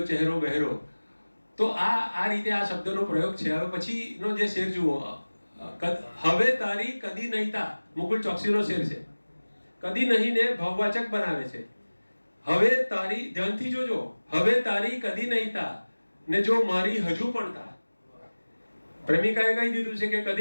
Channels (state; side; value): inverted; both; correlation -1.00